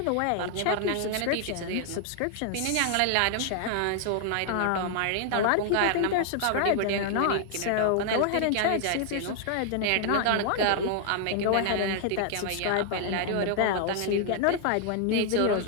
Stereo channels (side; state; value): both; different; correlation 0.00